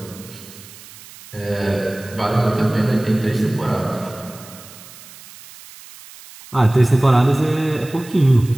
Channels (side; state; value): right; noise; hiss, 19 dB below the sound